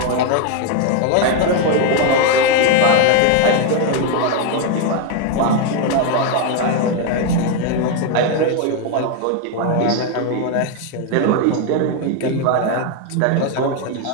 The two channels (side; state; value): both; different; correlation 0.01